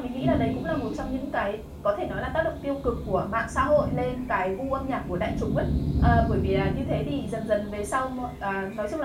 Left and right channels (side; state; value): both; identical; correlation 1.00